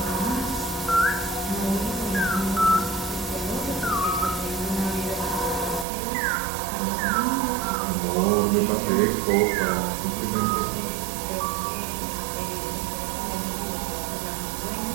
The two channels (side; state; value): left; drops out; at 5.9 s